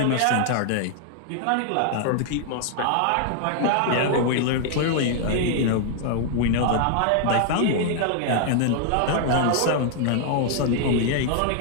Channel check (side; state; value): both; different; correlation 0.00